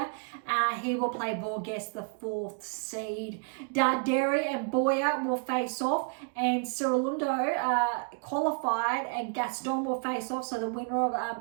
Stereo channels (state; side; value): quieter; left; 37.8 dB